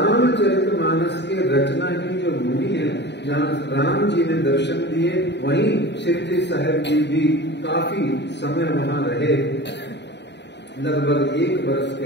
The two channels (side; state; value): right; late; 0.50 ms